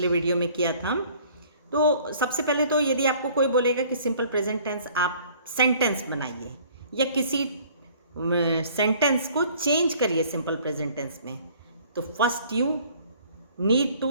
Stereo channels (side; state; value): both; inverted; correlation -0.54